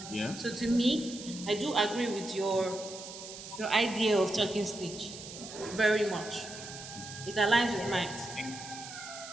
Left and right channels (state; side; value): noise; right; hiss, 12 dB below the sound